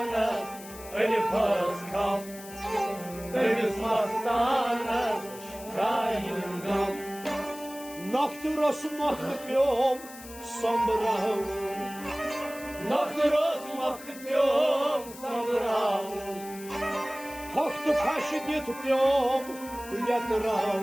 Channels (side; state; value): left; noise; hiss, 16 dB below the sound